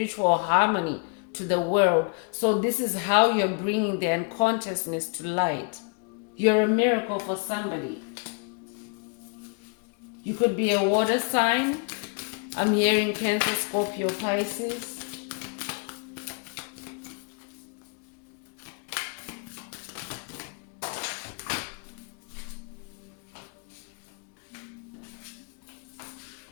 harmony to the world. So this is how you're bringing the unconsciousness to light. You're a miracle for somebody. You could be a water sign. I'm hearing Cancer, Scorpio, Pisces.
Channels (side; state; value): right; quieter; 35.2 dB